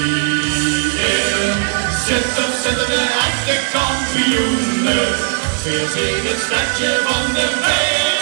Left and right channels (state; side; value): silent; left; 68 dB below the other